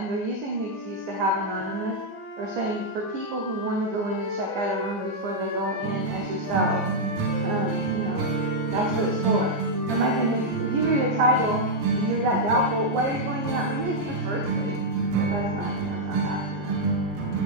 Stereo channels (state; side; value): late; left; 15 ms